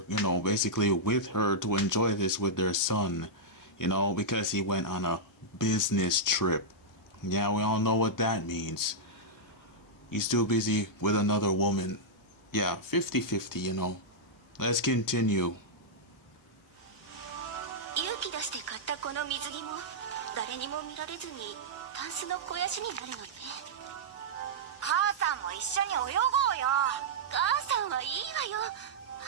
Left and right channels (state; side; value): normal; both; correlation -0.08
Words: you know, basically with her to enjoy this with their son, you know, because he went on a business trip. Yeah, we all know what that means. He's too busy with another woman. Yeah, 50-50, you know. Let's continue. 勇気出して買ったこの水着も誰にも見られずにタンスの肥やしになるのね。母さんも一緒に泳ごうよ。母さんはいいわよ。